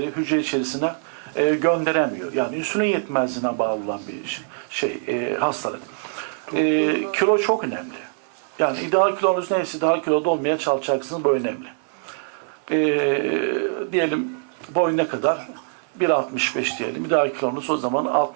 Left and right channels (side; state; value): left; silent; digital silence